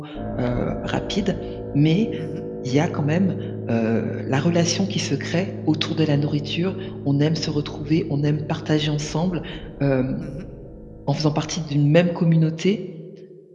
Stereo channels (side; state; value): both; identical; correlation 1.00